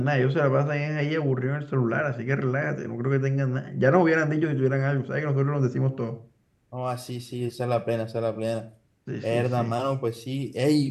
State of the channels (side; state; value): both; identical; correlation 1.00